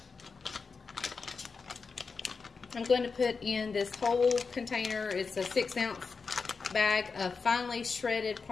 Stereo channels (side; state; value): right; quieter; 4.9 dB